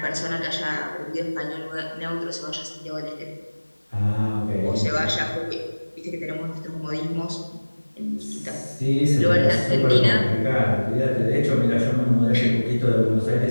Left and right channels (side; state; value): both; inverted; correlation -1.00